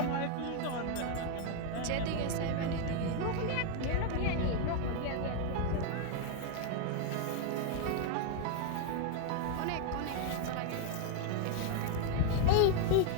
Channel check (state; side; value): different; both; correlation 0.00